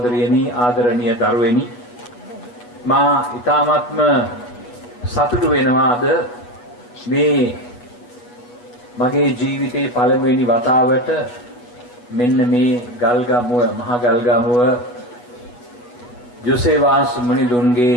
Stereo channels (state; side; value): late; right; 8.2 ms